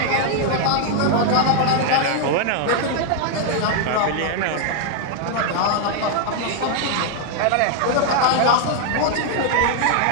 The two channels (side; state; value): both; different; correlation 0.00